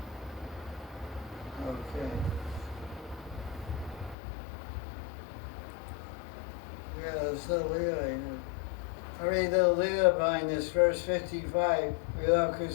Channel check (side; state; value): right; drops out; at 4.2 s